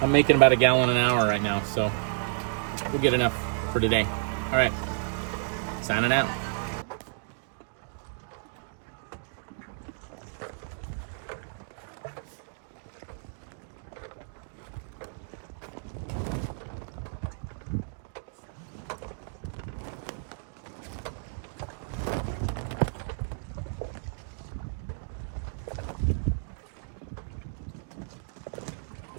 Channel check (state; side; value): silent; left; digital silence